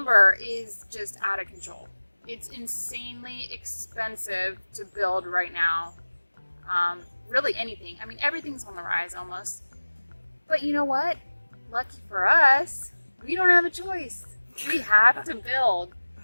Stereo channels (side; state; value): both; inverted; correlation -1.00